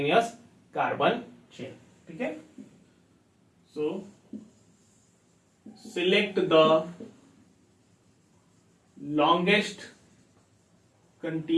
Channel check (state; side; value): identical; both; correlation 1.00